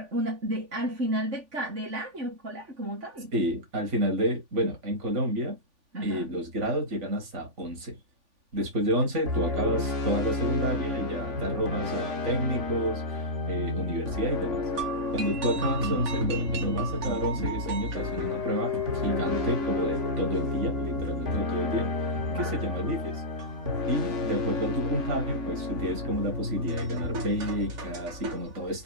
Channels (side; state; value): left; late; 3.5 ms